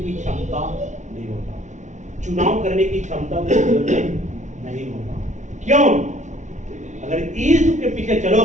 क्षमता नहीं होता, चुनाव करने की क्षमता नहीं होता। क्यों? अगर यीशु के पीछे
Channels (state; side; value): late; left; 0.35 ms